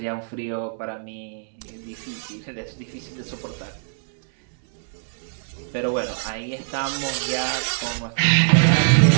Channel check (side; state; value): left; silent; digital silence